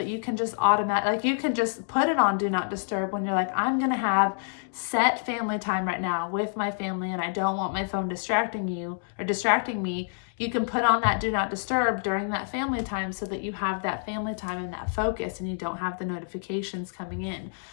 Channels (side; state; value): right; silent; digital silence